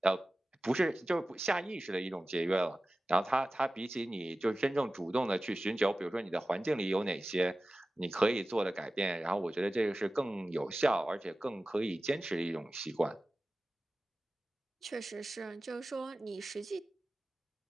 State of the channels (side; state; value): both; normal; correlation 0.96